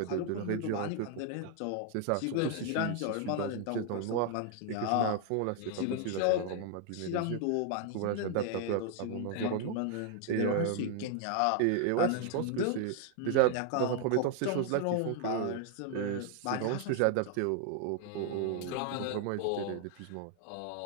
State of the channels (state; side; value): different; both; correlation 0.00